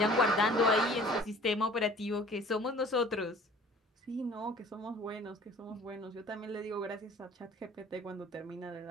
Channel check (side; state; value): both; normal; correlation 0.50